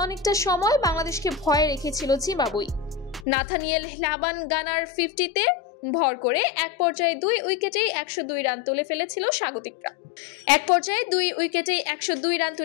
অনেকটা সময় বাংলাদেশকে ভয়ে রেখেছিল জিম্বাবুয়ে। নাথানিয়েল লাবানগানার 50-তে ভর করে এক পর্যায়ে 2 উইকেটেই 102 রান তুলে ফেলেছিল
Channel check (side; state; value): right; drops out; at 3.2 s